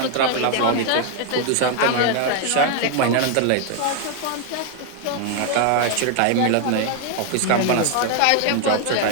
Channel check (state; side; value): different; both; correlation 0.00